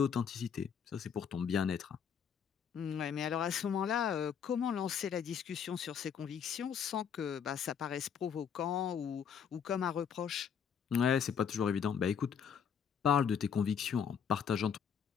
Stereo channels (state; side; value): quieter; right; 7.5 dB